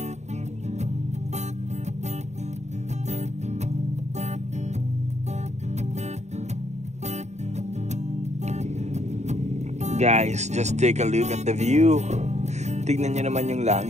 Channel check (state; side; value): late; left; 0.33 ms